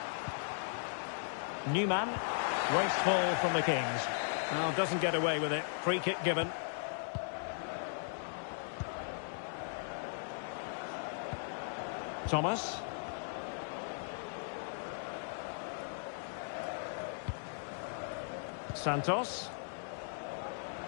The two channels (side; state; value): right; silent; digital silence